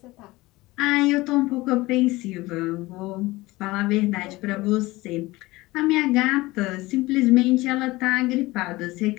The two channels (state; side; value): quieter; right; 20.2 dB